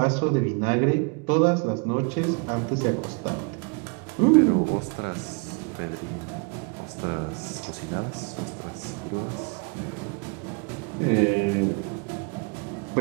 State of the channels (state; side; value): quieter; left; 33.5 dB